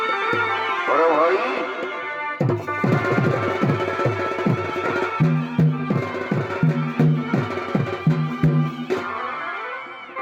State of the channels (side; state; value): both; identical; correlation 1.00